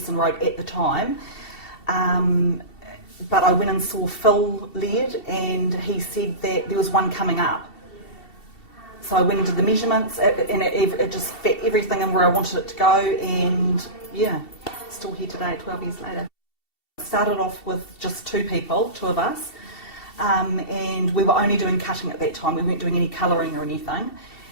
Road at the time. But I went and saw Phil Laird, and he said that there was one coming up. So I went into the measurements, and it just fit everything in where I wanted it to go, and yeah, still here today, 12 years later. Started off with just two of us, and we were only doing cutting at that time. We weren't doing any colouring or anything,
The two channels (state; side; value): late; right; 2.7 ms